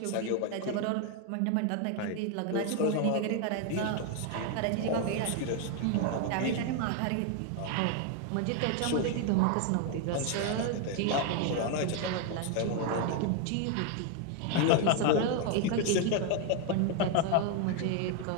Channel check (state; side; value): different; both; correlation 0.01